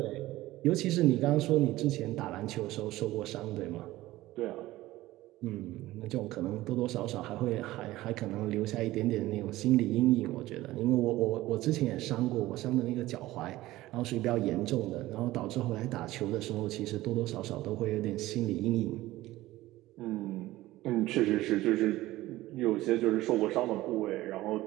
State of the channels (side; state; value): left; quieter; 17.0 dB